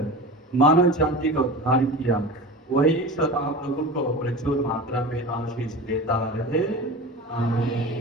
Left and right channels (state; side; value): normal; both; correlation 0.31